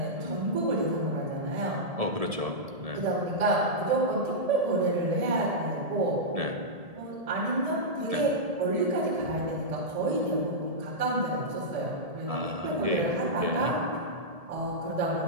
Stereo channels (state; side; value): late; left; 1.7 ms